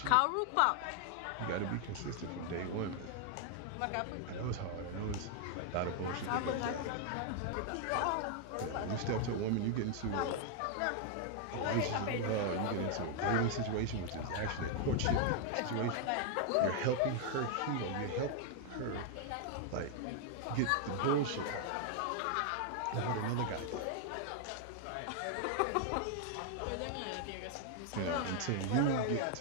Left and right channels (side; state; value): both; different; correlation 0.00